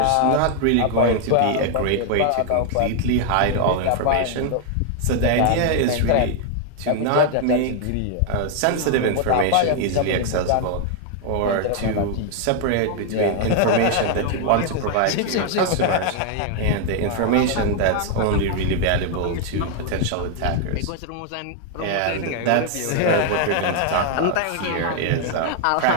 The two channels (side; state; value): both; different; correlation 0.00